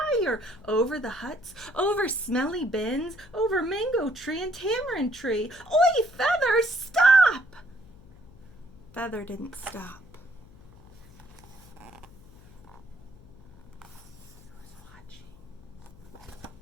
over the huts, over smelly bins, over mango tree and tamarind tree. Oi, Feather, stop! Feather didn't stop.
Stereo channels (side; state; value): left; noise; hum, 22 dB below the sound